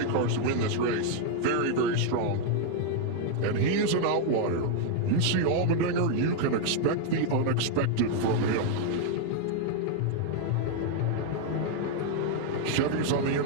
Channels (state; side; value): different; both; correlation 0.00